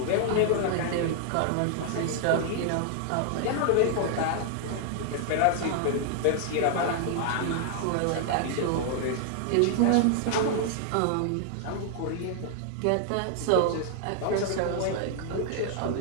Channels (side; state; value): both; different; correlation 0.00